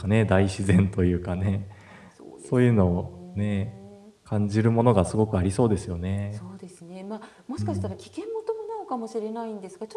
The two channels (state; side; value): identical; both; correlation 1.00